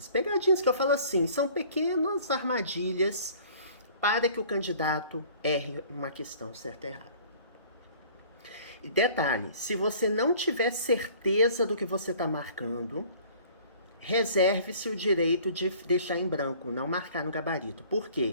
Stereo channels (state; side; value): inverted; both; correlation -0.51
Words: Pegadinhas que eu falo assim, são pequenas armadilhas para que o candidato erre uma questão certa e errada. E detalhe, se você não tiver certeza do que você está marcando, reserve-se o direito de deixar em branco, não marcar no gabarito. Por